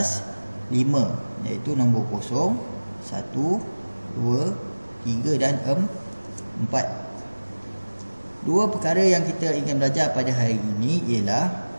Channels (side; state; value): both; inverted; correlation -1.00